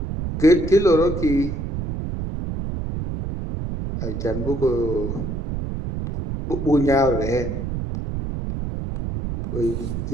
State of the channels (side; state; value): right; noise; rumble, 5 dB below the sound